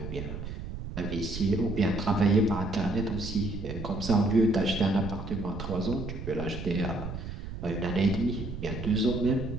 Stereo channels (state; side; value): noise; right; rumble, 8 dB below the sound